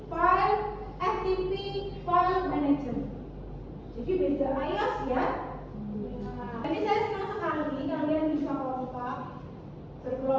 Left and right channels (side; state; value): both; identical; correlation 1.00